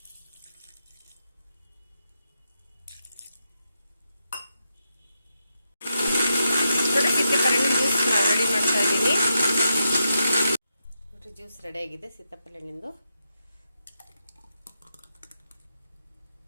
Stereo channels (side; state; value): both; inverted; correlation -0.85